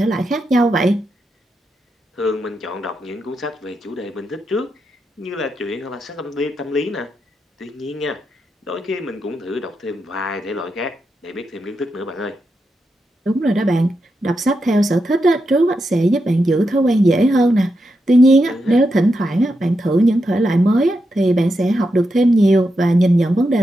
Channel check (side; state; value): both; normal; correlation 0.85